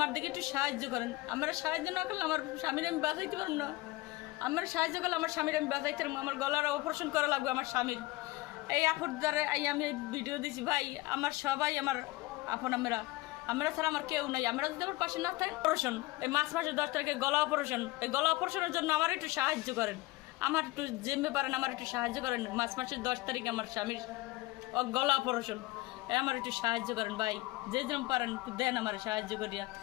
দিকে একটু সাহায্য করেন। আপনারা সাহায্য না করলে আমার স্বামীর আমি বাঁচাইতে পারব না। আপনারা সাহায্য করলে আমার স্বামীর আমি বাঁচাইতে পারবো। আমার গলার অপারেশন করা লাগবে আমার স্বামীর। এই আপুর দ্বারা আমি ভিডিও দিছি ভাই। আমার সবাই আমার আপন, আমরা ছাড়া আমার কেউ নাই। আমরা যদি আমার পাশে না থাকি, অপারেশন এই মাসের 10 তারিখে গলা অপারেশন। এই গলা অপারেশনের জন্য আমার একটু সাহায্য করেন। আমার একটু যেমনি পারেন আমার একটু সাহায্য করেন। মাসের 10 তারিখে আমার স্বামীর গলা অপারেশন, আমার একটু সাহায্য করেন ভাই। যে যেরকম পারেন একটু দেন আমার সাহায্য করিয়া,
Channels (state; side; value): quieter; right; 20.5 dB